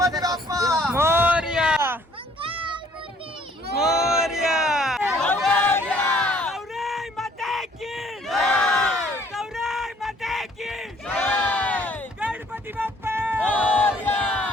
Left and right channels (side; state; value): both; normal; correlation 0.60